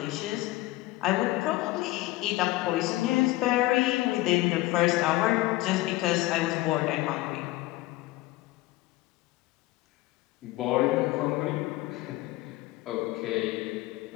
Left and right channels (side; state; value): right; quieter; 18.6 dB